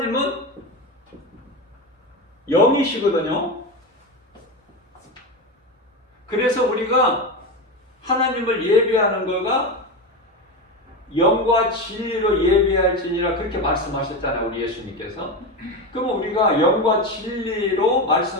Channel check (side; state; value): both; normal; correlation 0.19